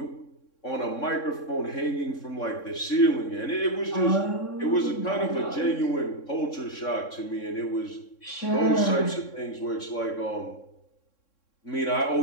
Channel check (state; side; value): late; right; 3.6 ms